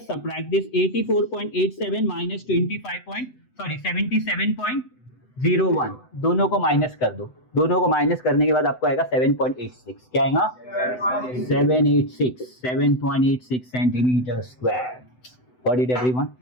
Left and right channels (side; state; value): right; late; 8.0 ms